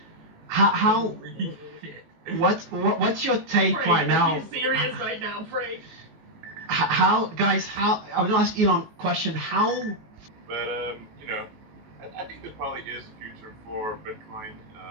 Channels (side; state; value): left; late; 19 ms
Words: What's your take Frank, right now? Are you serious right now, Frank? How I was gonna ask Elon a question. How? But you know, I think there probably is a future for Bitcoin,